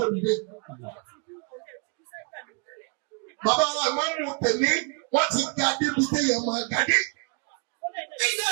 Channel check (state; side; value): quieter; left; 34.7 dB